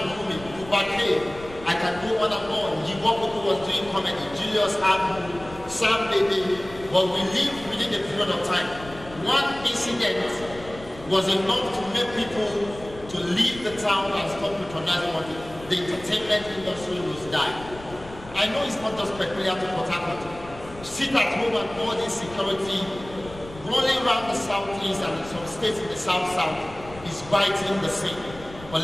booming, Kubake, I can go on and on, Yiboko was doing comedy, Julius Abu, Sam Baby, but we lived within a period of time. One incident was enough to make people to leave the town and stop patronizing money. The entertainment industry was dying. I know it's not just peculiar to Port Harcourt. Sit at home and all this security rolling around the southeast and some states in the south is biting the same. But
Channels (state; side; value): noise; left; rumble, 17 dB below the sound